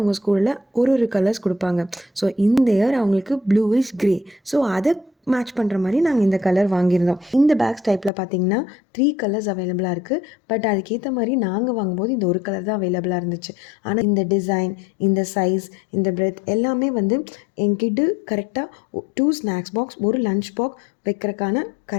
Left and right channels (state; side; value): drops out; right; at 8.1 s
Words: ஸ்கூலில் ஒரு கலர்ஸ் கொடுப்பாங்க. ஸோ இந்த இயர் அவங்களுக்கு ப்ளூ இஸ் க்ரே. ஸோ அதை மேட்ச் பண்ணுற மாதிரி நாங்கள் இந்த கலர் வாங்கியிருந்தோம். இந்த பேக்ஸ் டைப்பில் பார்த்திங்கன்னா 3 கலர்ஸ் அவைலபிளாக இருக்குது. பட் அதுக்கேற்ற மாதிரி நாங்கள் வாங்கும்போது இந்த ஒரு கலர் தான் அவைலபிளாக இருந்துச்சு. ஆனால் இந்த டிசைன், இந்த சைஸ், இந்த பிரெத் எல்லாமே என்கிட்ட கரெக்டாக 2 ஸ்நாக்ஸ் பாக்ஸ், ஒரு லஞ்ச் பாக்ஸ் வைக்கிறதுக்கான